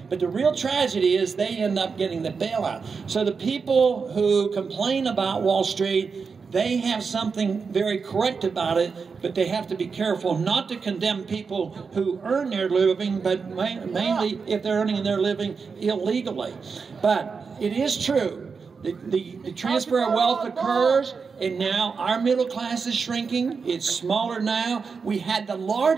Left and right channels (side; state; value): left; quieter; 5.3 dB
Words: But the real tragedy is they end up getting the bailout. So the people who complain about Wall Street, they have something very correct about it, but they have to be careful not to condemn people who earn their living, but mainly if they're earning their living illegally. But it is true. The transfer of wealth occurs, and now our middle class is shrinking. It's smaller now. We had the